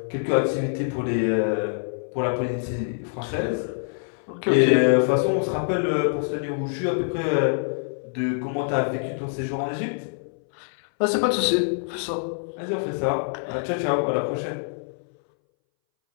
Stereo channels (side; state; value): right; silent; 62 dB below the other